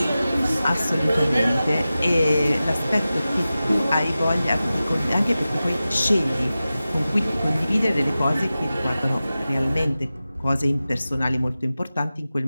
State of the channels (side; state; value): both; inverted; correlation -0.95